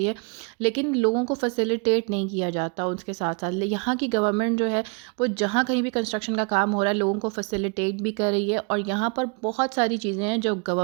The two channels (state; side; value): quieter; left; 34.0 dB